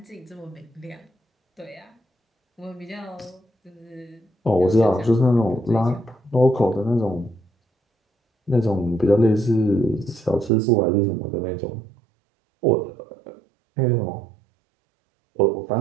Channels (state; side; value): drops out; left; at 10.5 s